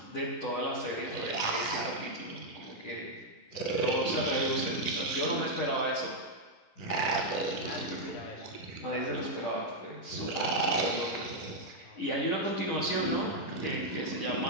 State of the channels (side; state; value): right; late; 10 ms